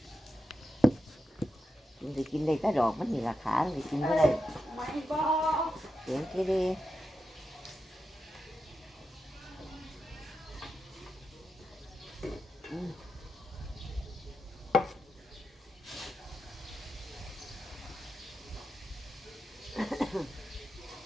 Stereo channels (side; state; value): both; normal; correlation 0.88